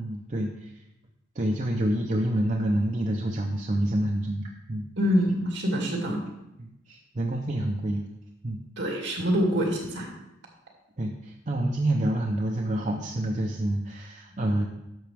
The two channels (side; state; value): both; normal; correlation 0.82